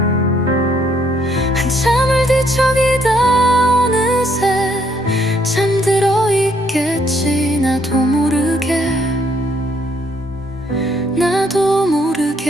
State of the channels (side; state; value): both; normal; correlation 0.69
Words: 한참을 뒤척이다 어느